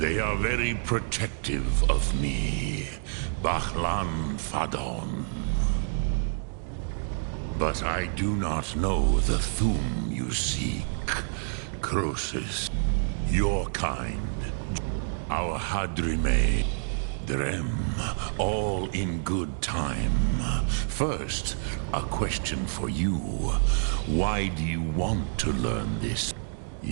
are very protective of me. Bahlan Fadon. But I do not know the Thum you seek. Croesus, your kind. Our Hadrime, Drem, all in good time. First, a question for you. Why do you want to learn this?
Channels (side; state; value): left; silent; digital silence